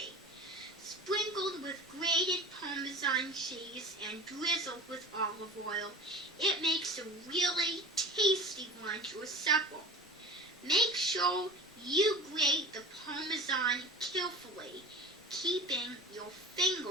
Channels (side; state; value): both; normal; correlation 0.36